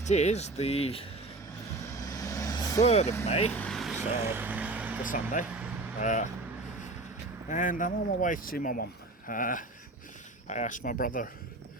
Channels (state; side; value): quieter; left; 3.0 dB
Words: is the 3rd of May, so the Sunday, and I'm on my way to see my mum. I asked my brother